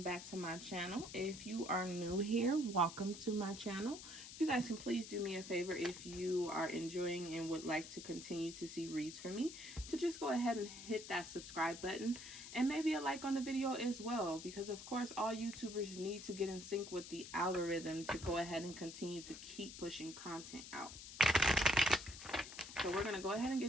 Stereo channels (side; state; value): left; noise; hiss, 12 dB below the sound